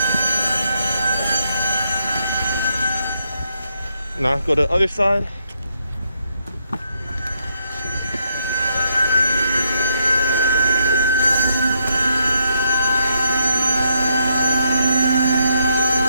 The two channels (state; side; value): inverted; both; correlation -0.76